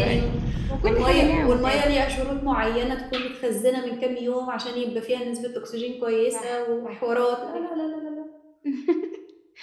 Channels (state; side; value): identical; both; correlation 1.00